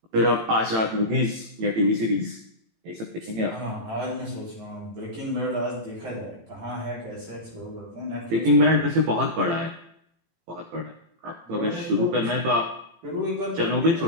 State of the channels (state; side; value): late; left; 18 ms